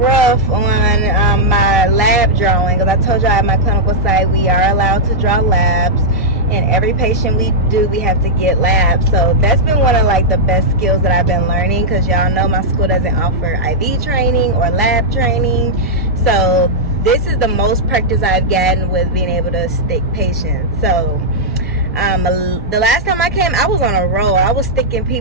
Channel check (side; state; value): both; normal; correlation -0.07